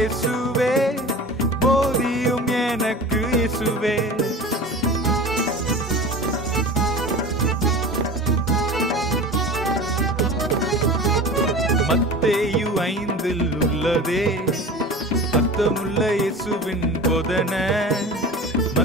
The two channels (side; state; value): both; normal; correlation 0.36